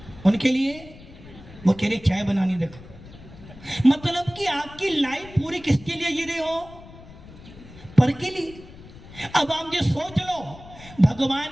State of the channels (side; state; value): left; noise; rumble, 18 dB below the sound